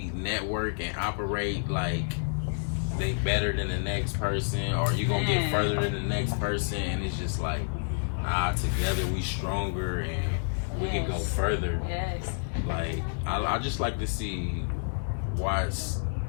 network and operate like they better than the next person, or you gonna get further than the next person, and it's just like, together we stronger and we can go further. Yes. Like I just like to see Watts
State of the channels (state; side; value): silent; right; 59 dB below the other